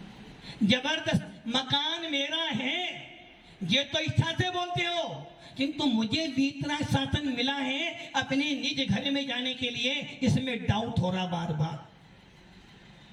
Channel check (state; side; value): identical; both; correlation 1.00